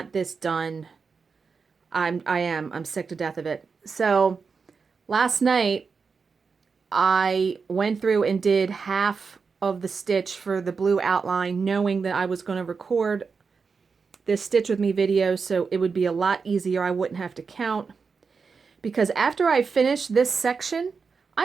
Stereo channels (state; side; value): quieter; left; 5.2 dB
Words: this done. I'm sick to death of it. So last night I went through and did half of the stitch for the blue outline, knowing that I was going to record this Stitch With Me video so it would be a lot easier. I wouldn't have to count. Because after I finish this section, I